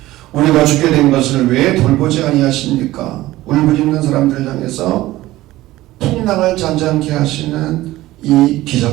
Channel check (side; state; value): left; quieter; 16.7 dB